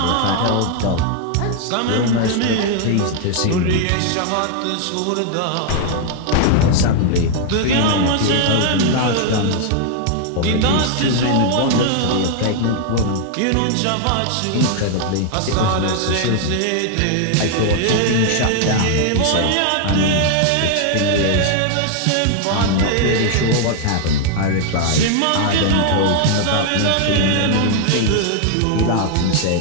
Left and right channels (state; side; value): different; both; correlation 0.00